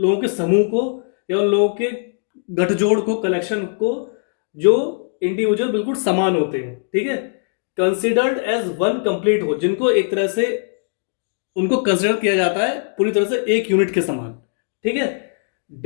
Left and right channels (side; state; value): right; silent; digital silence